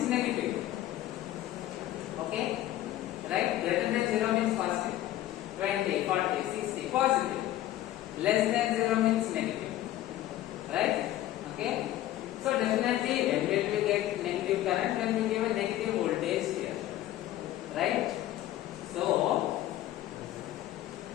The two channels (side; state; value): right; quieter; 14.0 dB